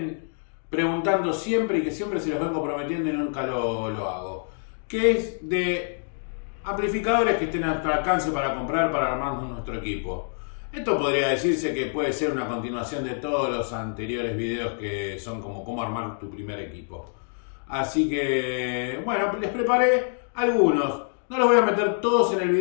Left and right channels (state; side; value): silent; right; digital silence